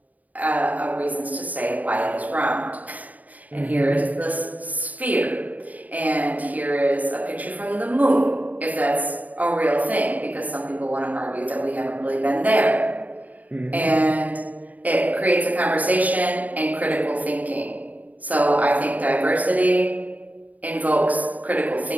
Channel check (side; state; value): left; late; 0.075 ms